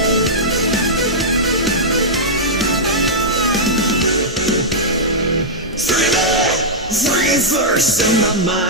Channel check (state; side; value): normal; both; correlation -0.09